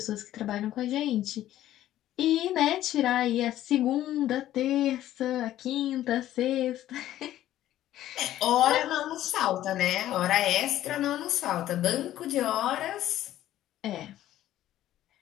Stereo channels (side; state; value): right; quieter; 13.2 dB